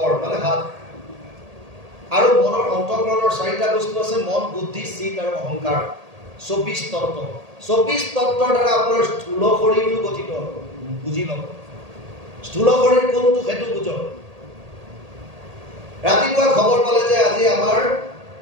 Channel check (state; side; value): late; left; 1.8 ms